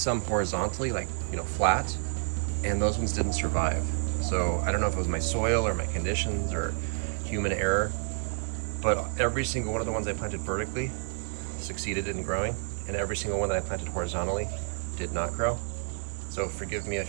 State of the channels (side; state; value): left; silent; 58 dB below the other